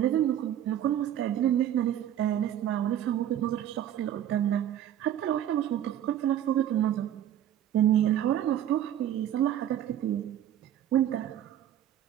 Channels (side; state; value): left; quieter; 11.0 dB